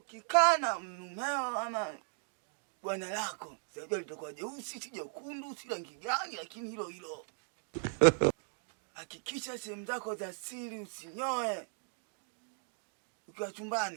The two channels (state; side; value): silent; left; 53 dB below the other